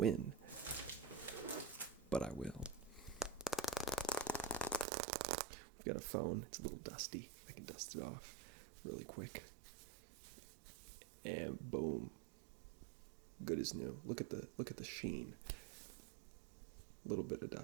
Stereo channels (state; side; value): drops out; left; at 4.9 s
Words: but I will. We've got a phone. It's a little dusty. I can dust it off really quick. And boom. Good as new. Look at the sheen. A little bit of